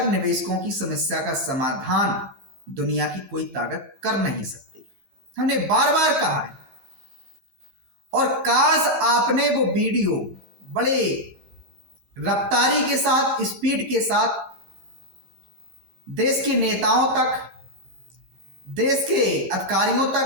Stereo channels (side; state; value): left; late; 15 ms